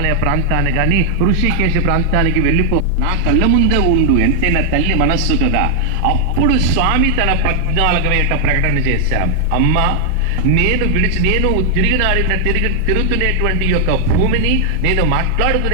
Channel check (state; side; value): different; both; correlation 0.00